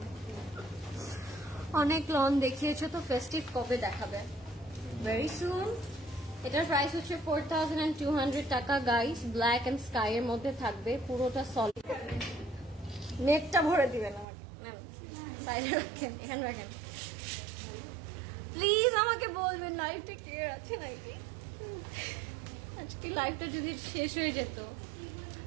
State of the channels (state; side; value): drops out; left; at 14.2 s